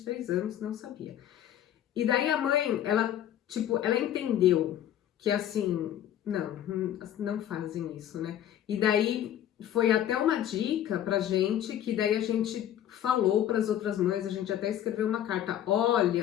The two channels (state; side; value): quieter; right; 11.1 dB